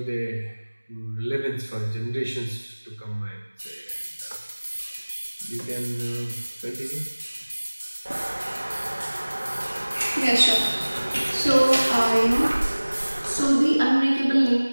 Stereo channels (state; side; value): inverted; both; correlation -1.00